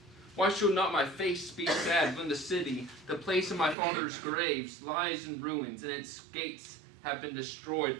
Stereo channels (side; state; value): left; drops out; at 3.8 s